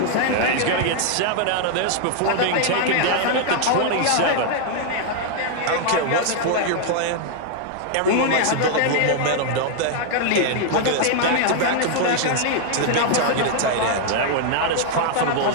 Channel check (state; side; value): different; both; correlation 0.00